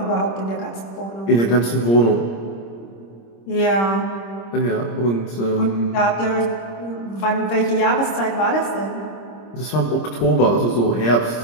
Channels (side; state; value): right; late; 26 ms